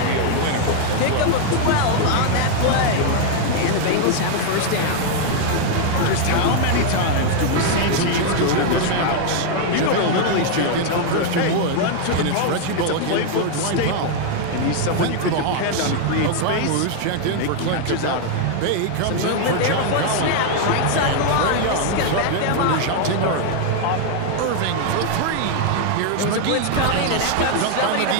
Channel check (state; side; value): different; both; correlation 0.00